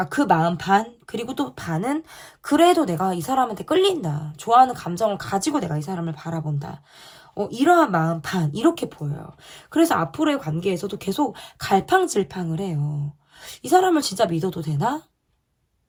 그 마음 반, 그리고 또 반은 그래도 내가 이 사람한테 끌린다, 좋아하는 감정을 가지고 내가 이 사람을 바라본다, 이러한 마음 반 이렇게 보여요. 그래서 앞으로의 관계에서도 계속 갈팡질팡을 해요. 이 사람을 진짜 믿어도 되나?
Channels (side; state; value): both; identical; correlation 1.00